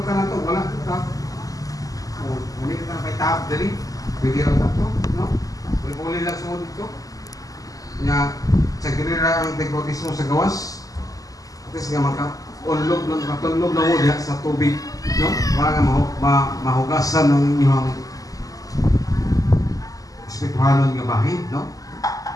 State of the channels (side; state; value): right; late; 0.17 ms